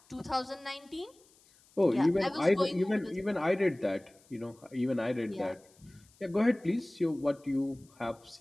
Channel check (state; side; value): noise; left; hiss, 30 dB below the sound